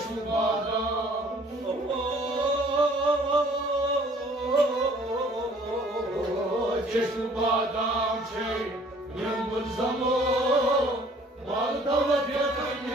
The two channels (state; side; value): normal; both; correlation 0.56